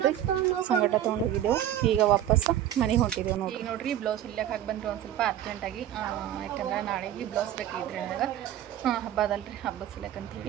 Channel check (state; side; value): quieter; left; 11.6 dB